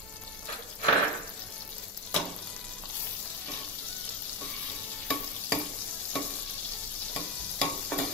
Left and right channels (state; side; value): normal; both; correlation 0.14